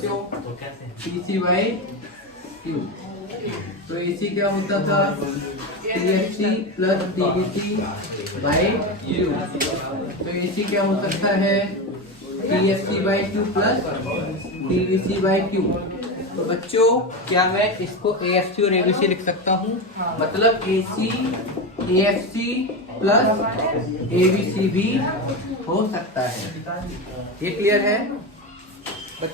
TC by Q। तो AC क्या होता था? TFC plus TVC by Q। तो AC क्या हो सकता है? TFC by Q plus TVC by Q। तो बच्चों क्या मैं इसको AFC और ABC लिख सकता हूँ? मतलब AC AFC प्लस ABC भी हो सकता है। ये क्लियर है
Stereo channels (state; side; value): normal; both; correlation 0.18